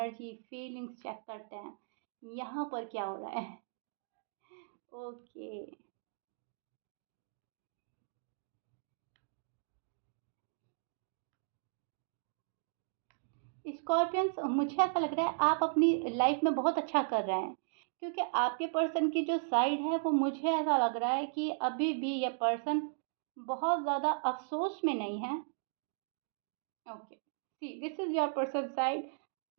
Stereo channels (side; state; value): left; silent; digital silence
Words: फीलिंग्स चेक करते हैं, यहाँ पर क्या हो रहा है। ओके, स्कॉर्पियंस, मुझे ऐसा लग रहा है आप अपनी लाइफ में बहुत अच्छा कर रहे हैं, क्योंकि आपके पर्सन की जो साइड है वो मुझे ऐसा लग रहा है कि अभी भी ये पर्सन बहुत ज़्यादा अफसोस में नहीं है। Okay, see this is your person side.